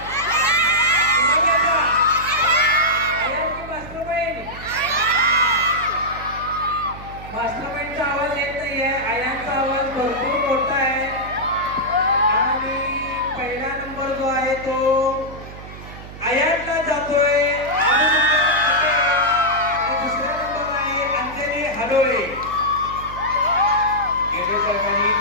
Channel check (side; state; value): right; noise; hum, 14 dB below the sound